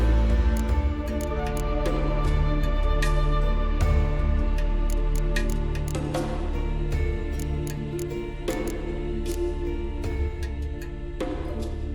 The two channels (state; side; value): identical; both; correlation 1.00